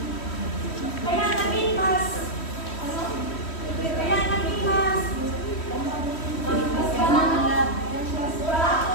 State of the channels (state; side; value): late; right; 3.1 ms